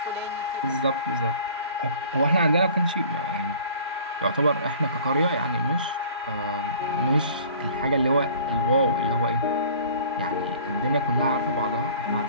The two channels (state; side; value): inverted; both; correlation -0.48